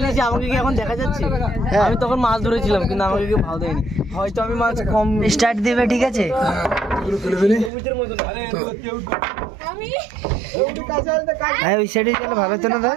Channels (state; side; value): drops out; left; at 7.7 s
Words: আমাকে কি এখন দেখা যাচ্ছে আমি তখন মাছ ধরেছিলাম কিন্তু আমাকে কেউ ভালো দেয়নি হয়তো আমি মাছ কম স্টার্ট দিবে ঠিক আছে হ্যাঁ ওই সাইডে গেলে ভালো হতো না